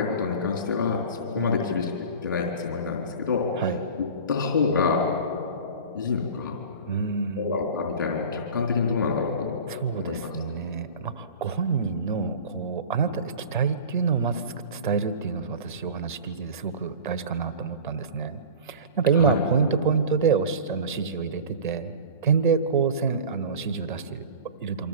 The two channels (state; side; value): inverted; both; correlation -0.36